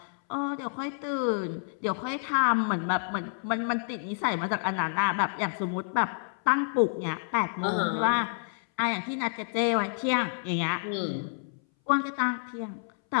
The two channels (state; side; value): silent; right; 59 dB below the other